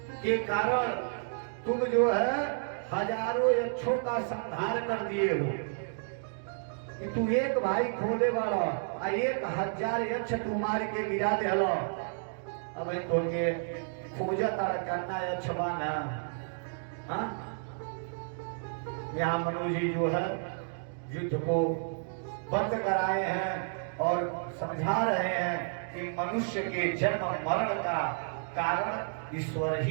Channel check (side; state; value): left; silent; digital silence